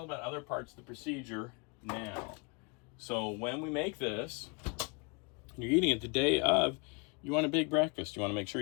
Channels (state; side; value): quieter; right; 32.1 dB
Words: about other parts of the procedure now. So when we make this, you're eating it the day of, you want a big breakfast. You want to make sure